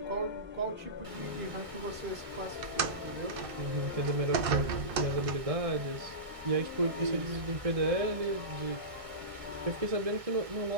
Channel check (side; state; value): left; late; 1.5 ms